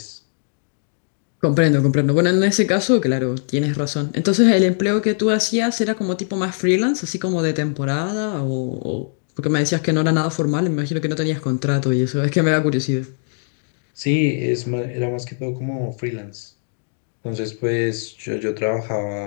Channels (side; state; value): right; silent; 65 dB below the other